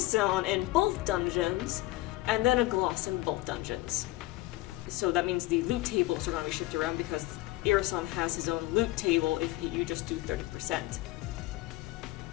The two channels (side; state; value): right; quieter; 18.7 dB